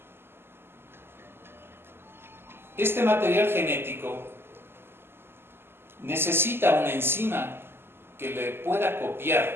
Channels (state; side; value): late; left; 0.11 ms